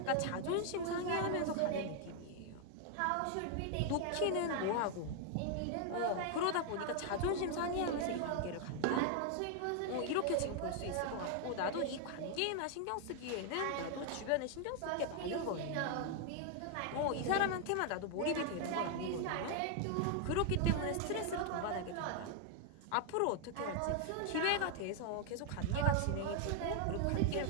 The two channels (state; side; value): different; both; correlation 0.00